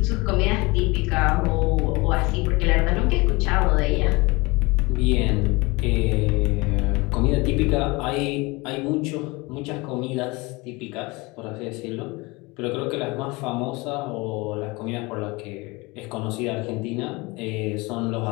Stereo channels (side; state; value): right; quieter; 24.5 dB